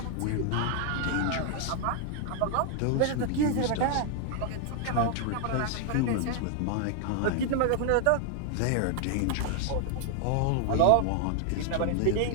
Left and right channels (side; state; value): both; different; correlation 0.00